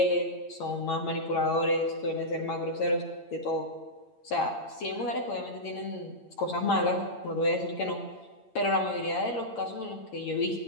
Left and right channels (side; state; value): right; late; 8.9 ms